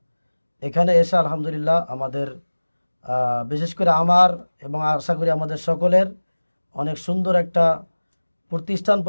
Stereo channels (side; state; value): both; inverted; correlation -1.00